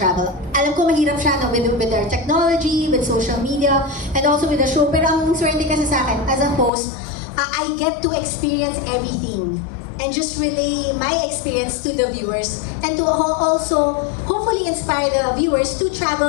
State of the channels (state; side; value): drops out; right; at 6.7 s